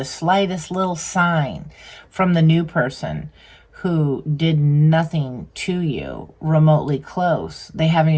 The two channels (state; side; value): identical; both; correlation 1.00